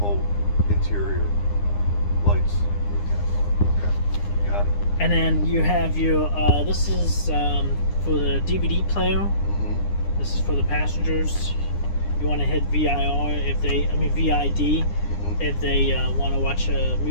interior lights. Okay, got it. And then you have your this is for the DVD player. This is for the passengers. You want to hit VID if they want to watch a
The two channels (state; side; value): late; right; 9.8 ms